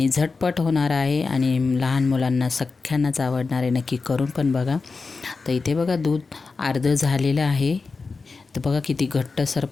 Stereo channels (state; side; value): quieter; right; 4.3 dB